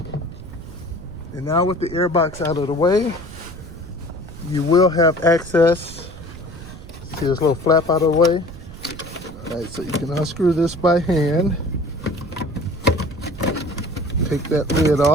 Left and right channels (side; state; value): right; noise; rumble, 14 dB below the sound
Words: And now with the air box out of the way, you will have access. See this little flap out of the way? All right, so you can unscrew this by hand. Take that lid